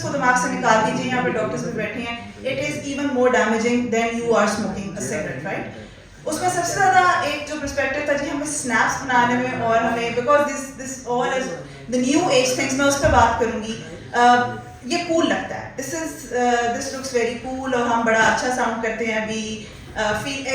दिमाग से निकाल दीजिए. यहाँ पे डॉक्टर्स भी बैठे हैं. It is even more damaging than you are smoking a cigarette, right? उसमें सबसे ज़्यादा एक जो पर्सपेक्टिव था जी हमें स्नैप्स बनाने में, और हमें because this all is the new age things, मैं उस पर बात करूँगी. ये कूल लगता है. दिस लुक्स वेरी कूल, और हम बड़ा अच्छा साउंड करते हैं. We feel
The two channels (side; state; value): both; identical; correlation 1.00